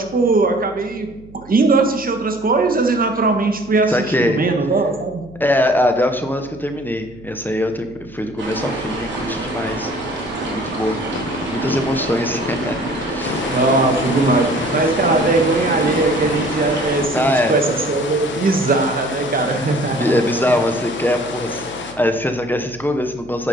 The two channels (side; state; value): right; noise; hum, 22 dB below the sound